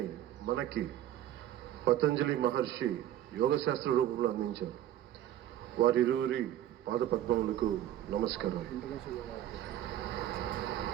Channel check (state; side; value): quieter; left; 12.1 dB